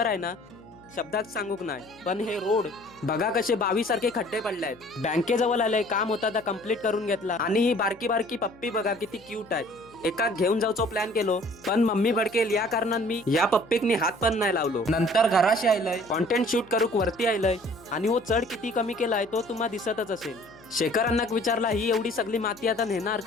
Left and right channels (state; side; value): noise; left; hum, 26 dB below the sound